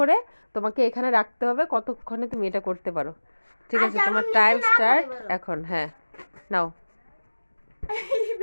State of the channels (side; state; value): both; inverted; correlation -1.00